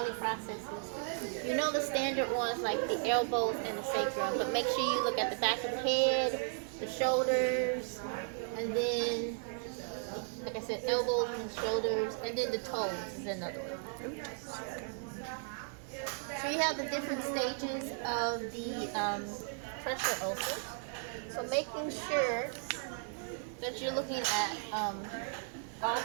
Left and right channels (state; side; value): silent; left; 54 dB below the other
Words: processes. You know the standard ones like the elbows and the sacrum, but make sure you look at the back of the head, the shoulders, and then like I said, elbows and shoulders, and then the toes is another one. So you have the different stages of the pressure ulcers. So making sure that you're looking at all